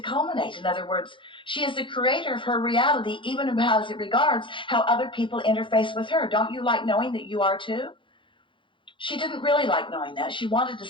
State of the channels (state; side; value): late; right; 0.24 ms